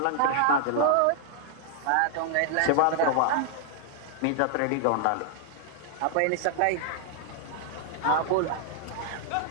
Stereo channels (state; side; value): different; both; correlation 0.00